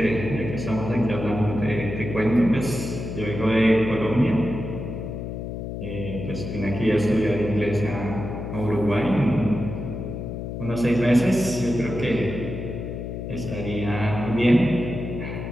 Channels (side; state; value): left; noise; hum, 6 dB below the sound